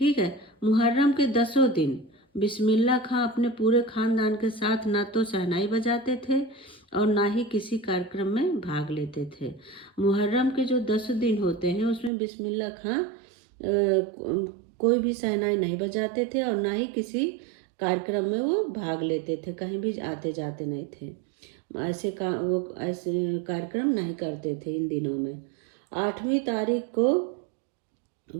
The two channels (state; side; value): drops out; left; at 12.1 s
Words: है। मुहर्रम के 10 दिन बिस्मिल्लाह खां अपने पूरे खानदान के साथ ना तो शहनाई बजाते थे और ना ही किसी कार्यक्रम में भाग लेते थे। मुहर्रम के जो 10 दिन होते हैं उसमें बिस्मिल्लाह खां कोई भी शहनाई नहीं बजाते थे और ना ही किसी कार्यक्रम में वो भाग लेते थे, कहीं भी आते जाते नहीं थे। वो ऐसे कार्यक्रम नहीं करते थे इन दिनों में। 8वीं तारीख को